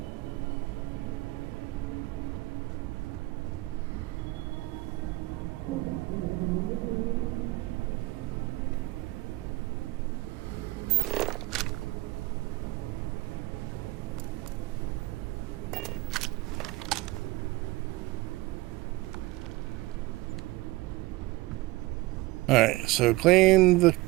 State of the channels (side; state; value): left; quieter; 20.7 dB